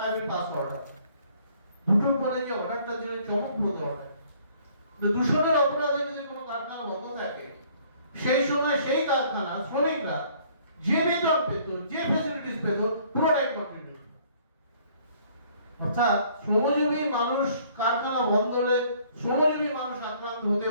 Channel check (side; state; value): both; inverted; correlation -0.59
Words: আই উইল পাস অর্ডার। 2টোর পরে যে অর্ডারটা দিলে চমকপ্রদ অর্ডার, দূষণের অপরাধে যদি কোনো কারখানা বন্ধ থাকে সেই সময় সেই কারখানা শ্রমিকরা যে বেতন পেত, যে ফ্যাসিলিটিস পেত, পুরোটাই কন্ট্রিবিউট। অর্থাৎ শ্রমজীবী মানুষ কারখানা বন্ধ হলে শ্রমজীবী মানুষ আক্রান্ত হতে